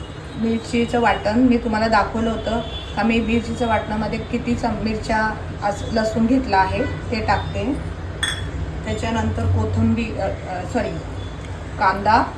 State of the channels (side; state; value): both; identical; correlation 1.00